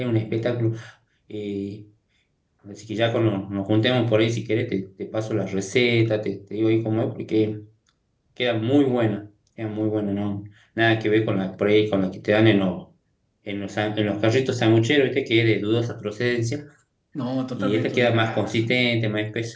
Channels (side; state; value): both; identical; correlation 1.00